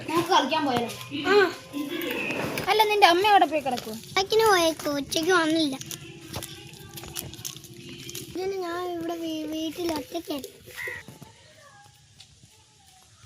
നമുക്ക് കളിക്കാൻ പോയാലോ? അല്ല, നിന്റെ അമ്മ അവിടെ പോയി കിടക്കും. ഉച്ചയ്ക്ക് പോയേക്കോ, ഉച്ചയ്ക്ക് വന്നില്ല. ഞാൻ ഇവിടെ വീട്ടിൽ ഒറ്റയ്ക്കാണ്.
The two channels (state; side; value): identical; both; correlation 1.00